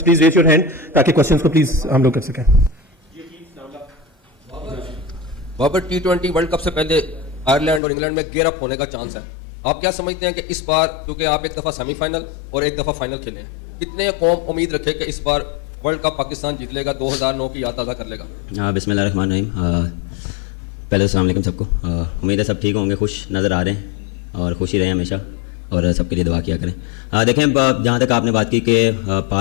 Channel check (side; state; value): right; drops out; at 7.8 s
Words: please raise your hand ताकि क्वेश्चंस को प्लीज हम लोग कर सकें। बाबर, T20 वर्ल्ड कप से पहले आयरलैंड और इंग्लैंड में गेयर अप होने का चांस है। आप क्या समझते हैं कि इस बार, क्योंकि आप एक दफ़ा सेमीफाइनल और एक दफ़ा फाइनल खेले हैं, कितने कौम उम्मीद रखे कि इस बार वर्ल्ड कप पाकिस्तान जीत लेगा, 2009 की याद ताज़ा कर लेगा? बिस्मिल्लाहिर्रहमानिर्रहीम। पहले अस्सलाम वालेकुम सबको। उम्मीद है सब ठीक होंगे, खुश नज़र आ रहे हैं और खुशी रहे हमेशा और सबके लिए दुआ किया करें। देखें, जहाँ तक आपने बात की कि